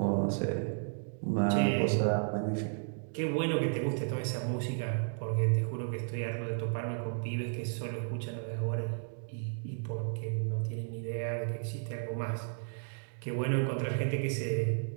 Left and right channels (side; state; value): left; silent; digital silence